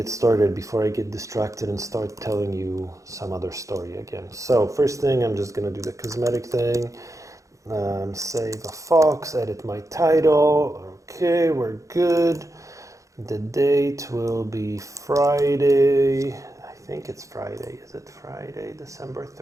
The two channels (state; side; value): late; left; 0.15 ms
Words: started before I get distracted and start telling you some other story again. So first thing, I'm just gonna do the cosmetic thing. Save a fox, edit my title. Okay, we're good. The date will be Friday. I think it's Friday. Is it Friday, December